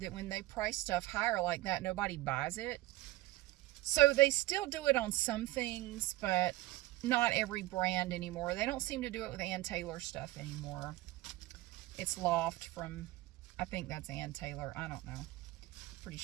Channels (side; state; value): left; quieter; 18.3 dB